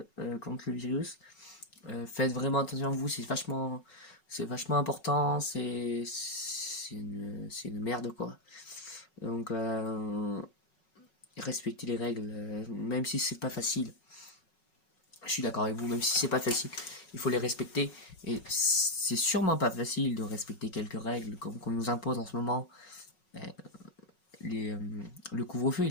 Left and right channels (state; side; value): late; right; 5.4 ms